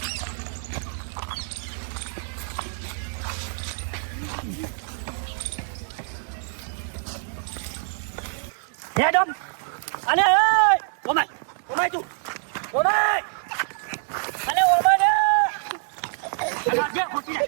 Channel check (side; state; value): left; silent; digital silence